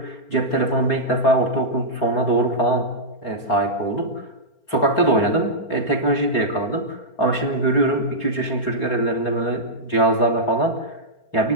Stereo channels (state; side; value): late; right; 4.3 ms